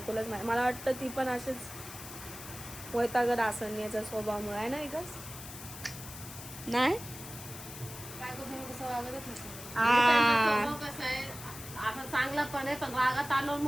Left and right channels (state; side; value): noise; left; hiss, 12 dB below the sound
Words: माहिती. मला वाटतं ती पण असेच वैतागत असेल याच्या स्वभावामुळे आहे ना विकास? नाही बायकोसमोर कसं वागतच नसतं. त्यांचा स्वभाव कसा आहे, आता चांगला पण आहे पण रागात आलो